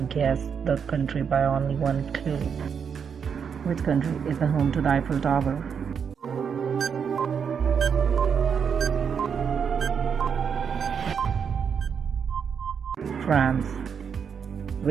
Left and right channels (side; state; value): left; quieter; 6.9 dB